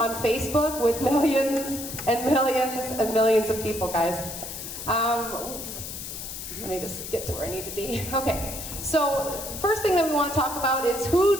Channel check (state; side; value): noise; left; hiss, 8 dB below the sound